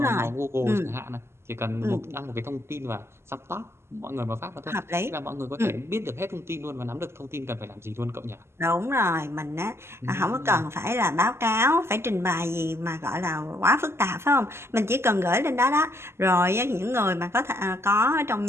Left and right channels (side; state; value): left; late; 0.12 ms